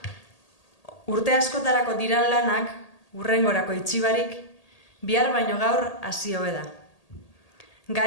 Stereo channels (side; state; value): right; late; 1.8 ms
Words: urte askotarako diran lanak, hurrengorako itxibarik, bihar baino gaur hasi hobe da.